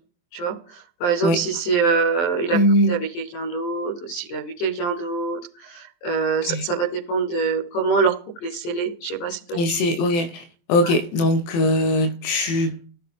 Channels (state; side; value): late; right; 24 ms